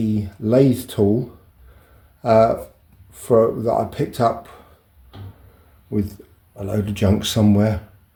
lathe tool that I picked up with a load of junk somewhere.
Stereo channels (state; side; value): identical; both; correlation 1.00